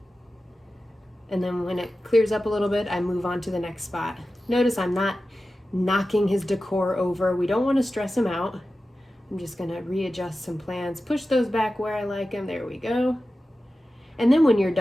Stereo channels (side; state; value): both; normal; correlation 0.94